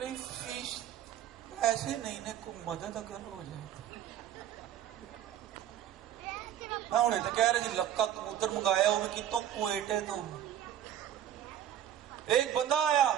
فیس ایسے نہیں نے کوئی مدد اگر ہو جائے، میں انہیں تو کہہ رہے جی لکا کبوتر منگایا وہ بھی کتوں کوئٹے تو۔ ایک بندہ آیا،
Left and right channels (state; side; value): quieter; left; 10.9 dB